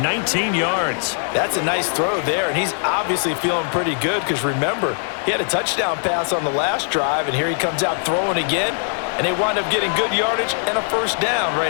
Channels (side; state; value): right; silent; 63 dB below the other